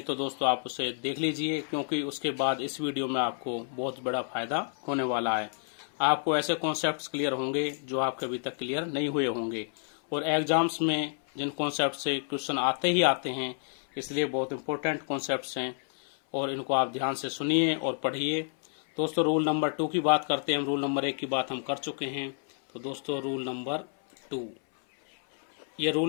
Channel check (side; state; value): right; silent; 58 dB below the other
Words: तो दोस्तों आप उसे देख लीजिए, क्योंकि उसके बाद इस वीडियो में आपको बहुत बड़ा फायदा होने वाला है। आपको ऐसे कॉन्सेप्ट्स क्लियर होंगे जो आपके अभी तक क्लियर नहीं हुए होंगे, और एग्जाम्स में जिन कॉन्सेप्ट से क्वेश्चन आते ही आते हैं, इसलिए बहुत इंपॉर्टेंट कॉन्सेप्ट्स हैं और इनको आप ध्यान से सुनिए और पढ़िए। दोस्तों, रूल नंबर 2 की बात करते हैं। हम रूल नंबर 1 की बात हम कर चुके हैं, तो दोस्तों रूल नंबर 2, ये